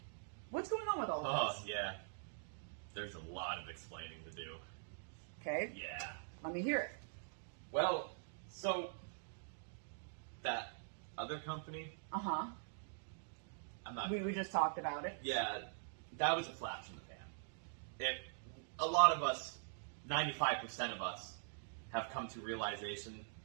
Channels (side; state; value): left; silent; digital silence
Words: going on with all of this? Oh, yeah. There's a lot of explaining to do. Okay. Yeah. Let me hear it. Well, so that other company, Uh-huh. I'm not... We just talked about it. Yeah, that was a flash in the pan. A lot of us, 95% of us, have come to realization